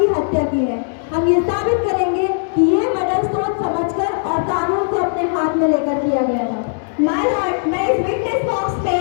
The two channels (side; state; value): right; silent; digital silence